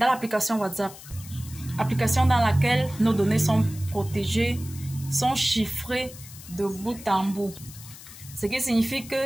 l'application WhatsApp. Application dans laquelle nos données sont protégées, sont chiffrées de bout en bout. Ce qui signifie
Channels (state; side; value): noise; left; hiss, 16 dB below the sound